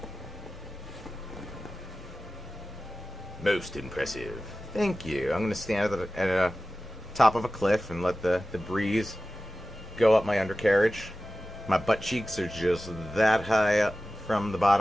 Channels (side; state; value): both; normal; correlation 0.95